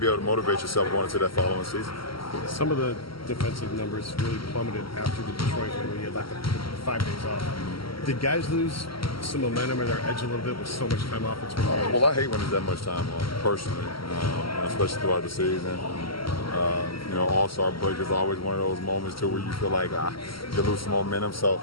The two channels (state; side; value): late; right; 0.74 ms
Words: able to motivate yourself going into that following season. Some of the defensive numbers really plummeted after the Detroit win when you had like 5 days off. Did guys lose some momentum or their edge a little bit with so much time off between games? Well, I hate when there's that much time off, personally, especially throughout the season. All-Star break is always one of those moments too where you feel like you lose some momentum. So